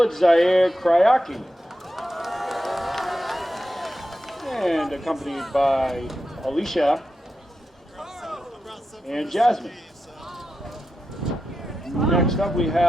Zaire Kryaki, and accompanied by Alicia and Jasmine. Next up, we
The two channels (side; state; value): both; normal; correlation 0.89